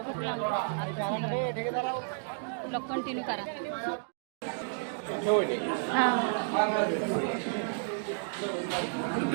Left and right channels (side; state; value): left; silent; digital silence